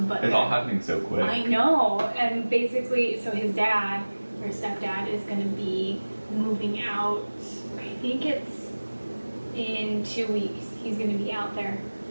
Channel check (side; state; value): both; inverted; correlation -1.00